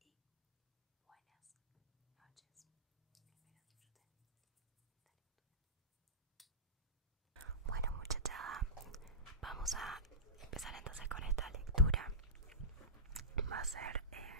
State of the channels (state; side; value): normal; both; correlation -0.18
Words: buenas noches. Espero disfruten esta lectura. Bueno, muchachada, vamos a empezar entonces con esta lectura. Va a ser